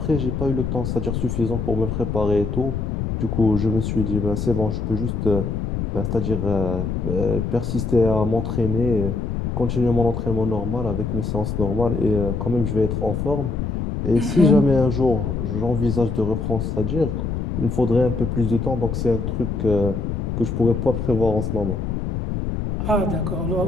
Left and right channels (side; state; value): left; noise; rumble, 2 dB below the sound